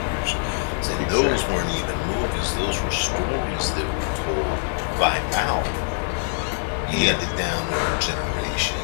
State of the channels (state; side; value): silent; right; digital silence